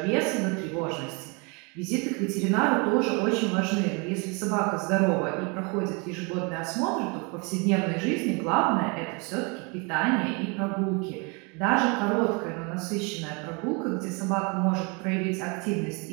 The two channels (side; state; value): left; quieter; 31.2 dB